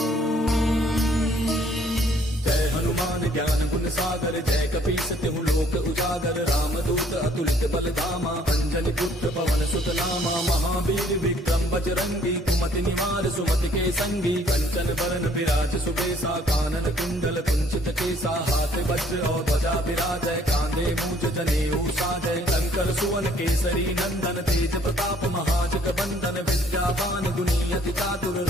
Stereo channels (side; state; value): both; normal; correlation 0.61